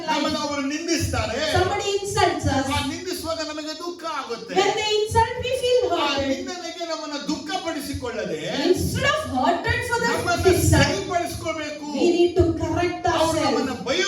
ನಮ್ಮನ್ನ life. ಅವರು ನಿಂದಿಸ್ತಾರೆ, Somebody insults us. ಆ ನಿಂದಿಸುವಾಗ ನಮಗೆ ದುಃಖ ಆಗುತ್ತೆ. When they insult, we feel ಆ hurt. ನಿಂದನೆಗೆ ನಮ್ಮನ್ನ ದುಃಖ ಪಡಿಸಿಕೊಳ್ಳಿ. ಪಡಿಸಿಕೊಳ್ಳದೆ instead of hurted for the ನಮ್ಮನ್ನು insult, ಸರಿಪಡಿಸಿಕೊಳ್ಳಬೇಕು. we need to correct ಅವರು ourselves. ನಮ್ಮನ್ನ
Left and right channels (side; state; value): both; identical; correlation 1.00